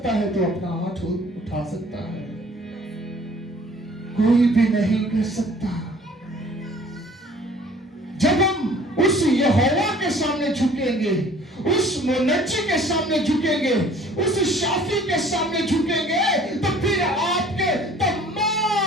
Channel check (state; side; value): normal; both; correlation 0.52